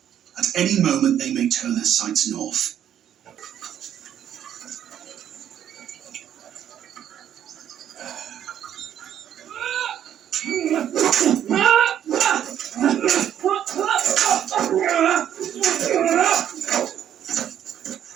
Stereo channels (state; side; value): quieter; left; 10.1 dB